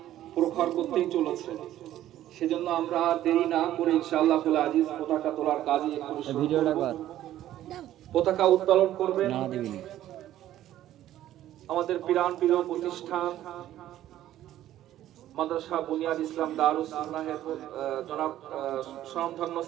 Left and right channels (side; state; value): left; quieter; 13.0 dB